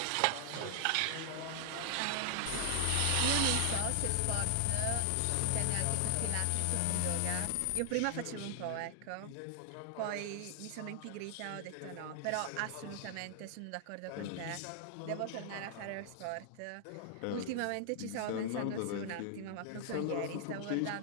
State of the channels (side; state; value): both; different; correlation 0.00